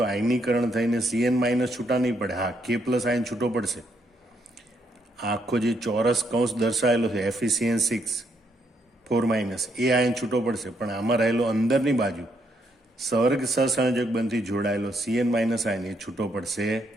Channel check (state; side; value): normal; both; correlation 0.75